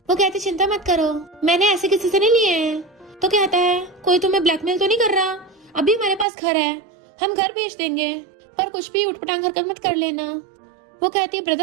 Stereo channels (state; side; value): drops out; left; at 6.2 s